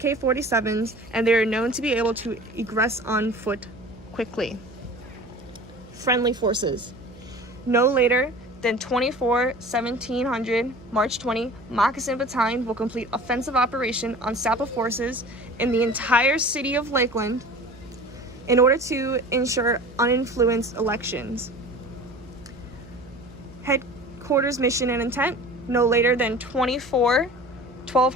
and they are known to be able to egress on foot quickly. Friendly forces. No later than 24/1700, March 20, Moccasin Battalion will complete offensive operation on SAPA forces in the entire city of Lakeland in order to ensure uninfluenced elections. Headquarters mission and intent. No later than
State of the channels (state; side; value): noise; right; hum, 22 dB below the sound